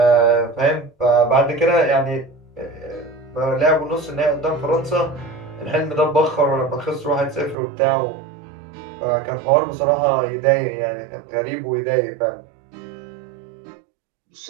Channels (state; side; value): drops out; left; at 7.6 s